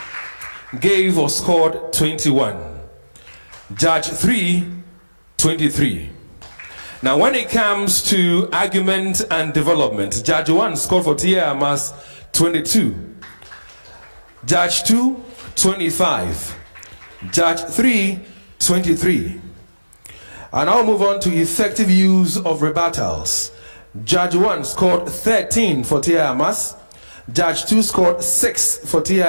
gave or scored 21. Judge 3, 23. Now when it comes to argument and development, Judge 1 scored for TI Amass 22. Judge 2, 25. Judge 3, 23. And I'll move on to effective use of rebuttals. Judge 1 scored 13 for TI Amass. Judge 2 scored 6 for TI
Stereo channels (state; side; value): inverted; both; correlation -1.00